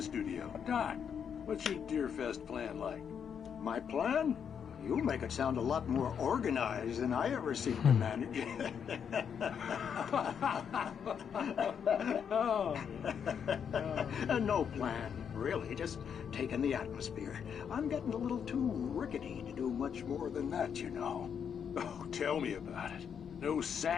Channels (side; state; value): right; quieter; 7.5 dB